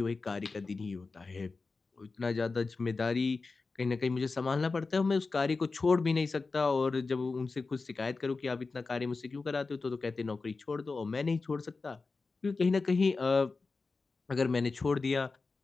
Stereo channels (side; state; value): right; quieter; 4.0 dB